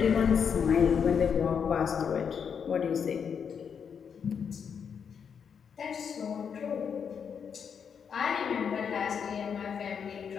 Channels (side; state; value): right; quieter; 7.0 dB